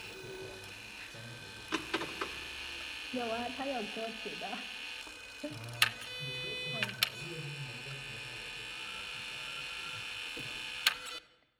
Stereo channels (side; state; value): both; identical; correlation 1.00